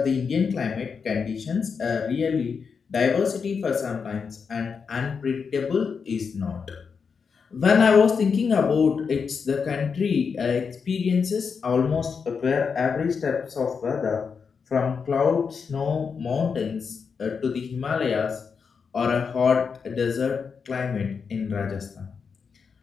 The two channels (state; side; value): quieter; right; 5.8 dB